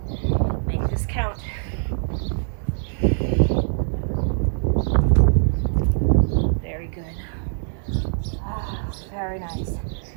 Make this count. Very good. Very nice.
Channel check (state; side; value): silent; left; 63 dB below the other